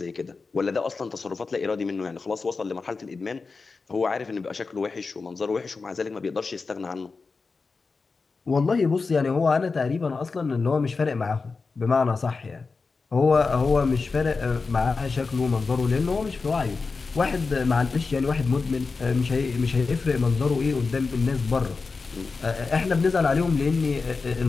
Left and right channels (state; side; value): quieter; right; 4.3 dB